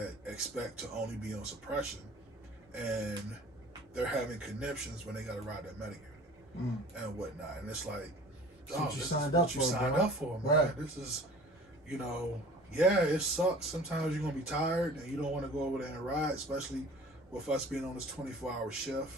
expect to only be on suppression, and they're having conniptions when they got to ride that medic unit and whatnot. And it's like, That's what you this signed is up what you for, signed bro. up for, man. Right. This is, yeah, it sucks. Sometimes you're gonna be tired and you don't want to go over there and ride, especially with us being on this 24-hour shift.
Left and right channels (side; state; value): both; normal; correlation 0.45